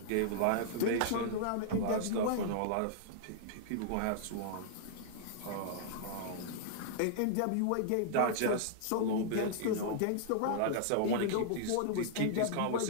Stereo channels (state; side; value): different; both; correlation -0.01